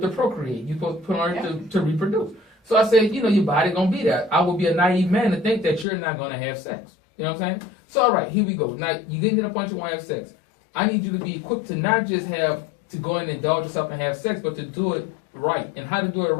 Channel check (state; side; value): drops out; right; at 5.9 s